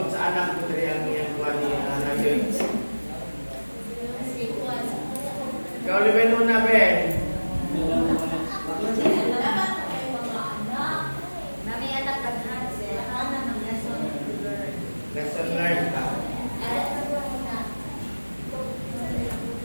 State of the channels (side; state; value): both; inverted; correlation -1.00